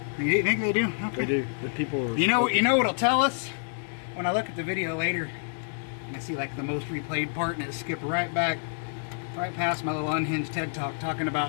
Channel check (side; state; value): right; silent; digital silence